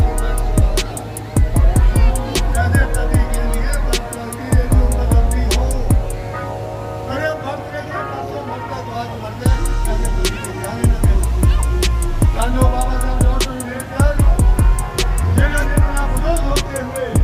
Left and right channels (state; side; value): identical; both; correlation 1.00